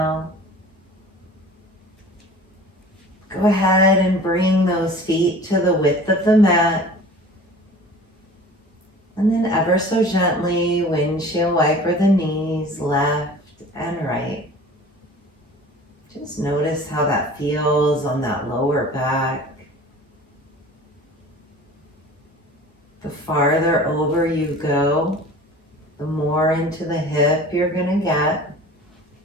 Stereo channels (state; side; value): normal; both; correlation 0.43